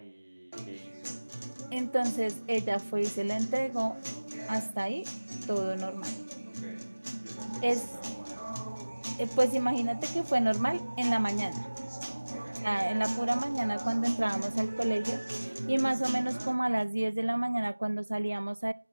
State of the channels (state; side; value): inverted; both; correlation -1.00